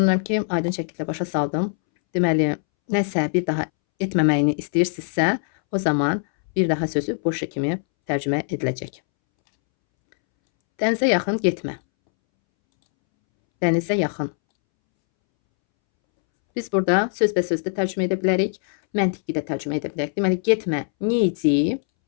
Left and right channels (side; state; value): right; silent; 64 dB below the other